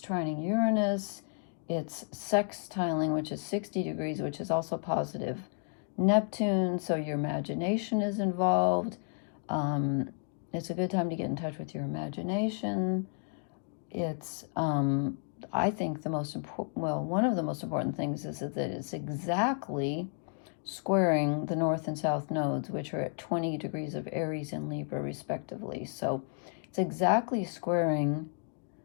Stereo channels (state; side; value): silent; right; 55 dB below the other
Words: Uranus. It's sextiling, which is 60 degrees, which is also positive. Neptune, so your imagination is involved. It's a good time to get in touch with your imagination. It's, I think the most important, well, one of the most important things is that it's exactly squaring the north and south nodes, which are at 20 degrees of Aries and Libra, respectively. So it's exactly squaring